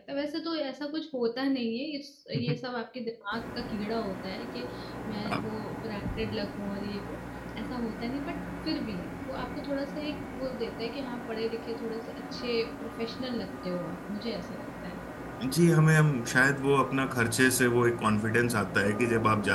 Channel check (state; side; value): identical; both; correlation 1.00